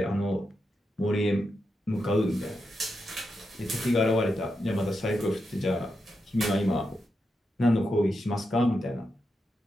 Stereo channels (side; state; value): both; normal; correlation 0.86